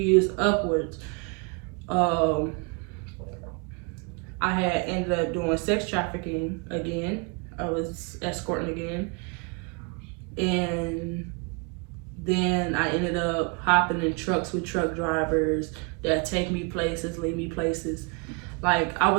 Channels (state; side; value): quieter; left; 33.4 dB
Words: upwards, I had ended up doing sex trafficking again. I was escorting again. And Then I ended up hopping in trucks with truck drivers that take me places, leave me places. Like, I